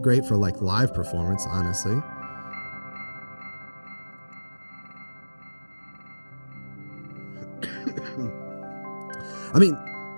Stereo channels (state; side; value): inverted; both; correlation -1.00